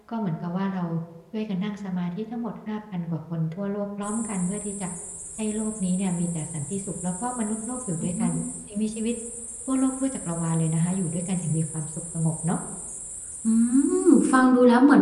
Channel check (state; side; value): identical; both; correlation 1.00